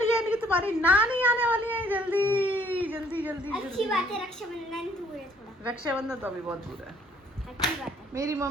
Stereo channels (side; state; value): both; normal; correlation 0.62